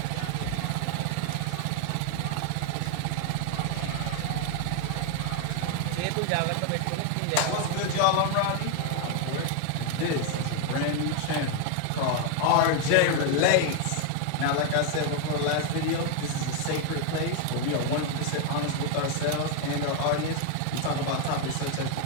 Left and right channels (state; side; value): different; both; correlation 0.01